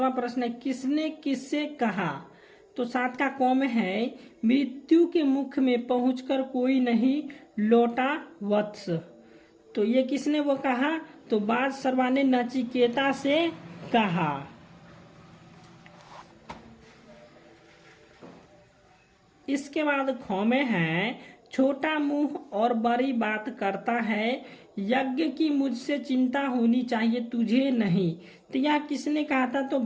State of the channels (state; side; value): identical; both; correlation 1.00